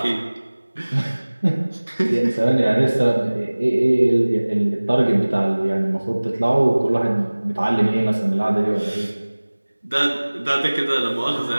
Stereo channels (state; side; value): inverted; both; correlation -1.00